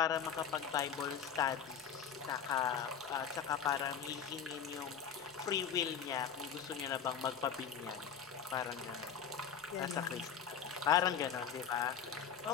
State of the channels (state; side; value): quieter; right; 7.6 dB